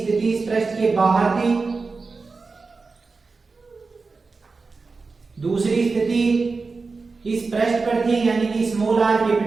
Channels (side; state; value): left; quieter; 4.2 dB